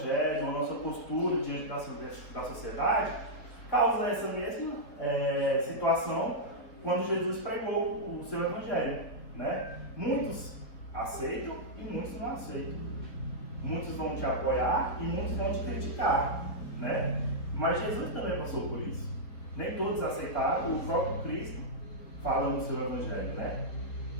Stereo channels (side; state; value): right; late; 4.3 ms